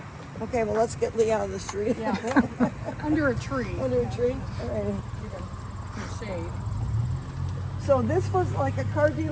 Okay, well, let's get Lee out of the street. Yeah. Under a tree. Under a tree. All right. In shade. So this was like a car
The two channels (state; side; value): identical; both; correlation 1.00